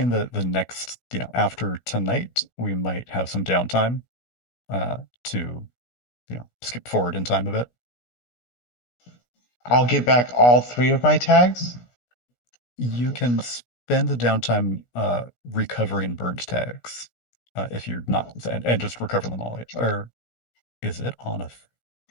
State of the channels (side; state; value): right; late; 16 ms